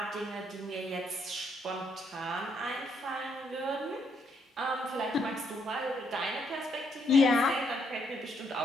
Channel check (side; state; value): both; normal; correlation 0.73